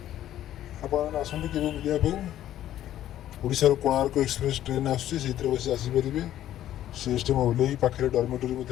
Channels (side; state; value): right; quieter; 12.3 dB